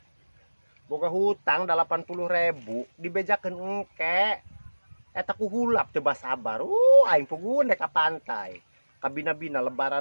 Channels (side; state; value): both; inverted; correlation -1.00